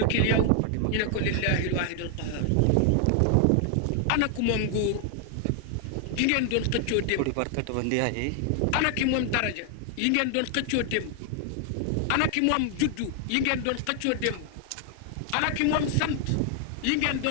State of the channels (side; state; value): both; different; correlation 0.00